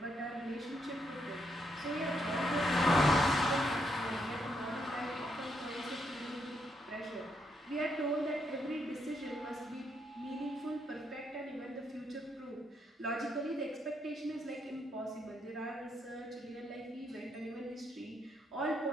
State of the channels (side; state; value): both; normal; correlation 0.77